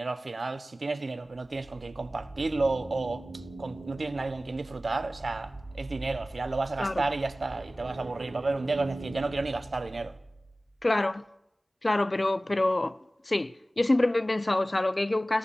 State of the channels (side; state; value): both; normal; correlation 0.96